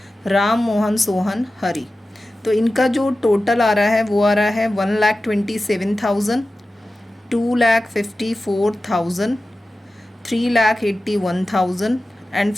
राम, मोहन, सोहन, हरी। तो इनका जो टोटल आ रहा है वो आ रहा है 1,27,000, 2,54,000, 3,81,000 एंड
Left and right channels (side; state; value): both; normal; correlation 0.94